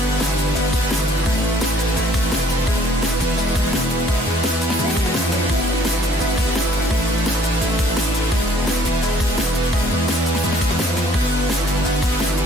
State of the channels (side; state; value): both; normal; correlation 0.59